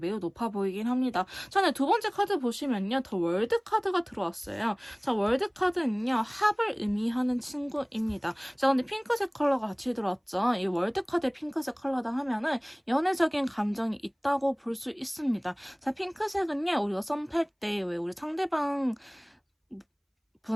높아 보이긴 합니다. 전에 두 번째 카드 보시면요. 더 월드 카드가 들어왔어요. 자, 월드 카드는요. 합을 의미하는 친구입니다. 자, 근데 핑크색 컬러가 같이 들어왔죠. 이 월드 카드의 핑크색 컬러다 하면은 연애적인 감정이 있다고 볼 수 있습니다. 자, 핑크색은요. 우리가 썸 탈 때 왜 우리 상대방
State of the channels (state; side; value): identical; both; correlation 1.00